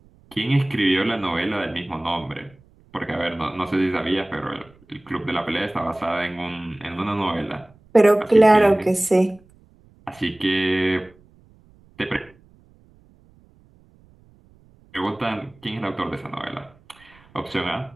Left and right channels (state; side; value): noise; right; rumble, 29 dB below the sound